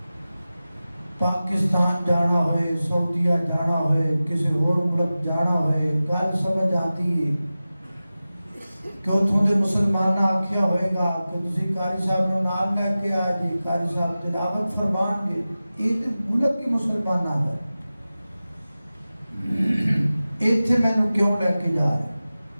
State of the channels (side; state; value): both; inverted; correlation -0.95